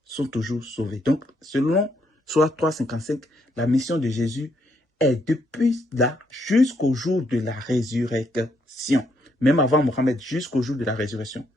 sont toujours sauvés. Donc, selon Sourate 3:55, la mission de Jésus est depuis là jusqu'au jour de la résurrection. Même avant Mohammed, jusqu'au jour de la résurrection.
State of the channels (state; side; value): normal; both; correlation 0.74